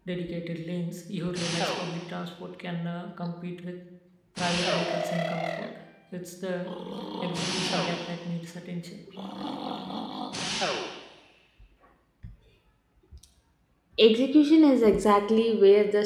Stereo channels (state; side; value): identical; both; correlation 1.00